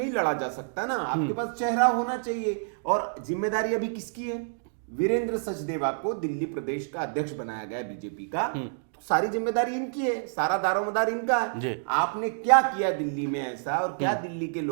लड़ा जा सकता ना, आपके पास चेहरा होना चाहिए। और जिम्मेदारी अभी किसकी है? वीरेंद्र सचदेवा को दिल्ली प्रदेश का अध्यक्ष बनाया गया बीजेपी का, तो सारी जिम्मेदारी इनकी है, सारा दारोमदार इनका है। आपने क्या किया दिल्ली में ऐसा, और क्या दिल्ली के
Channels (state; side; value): silent; left; digital silence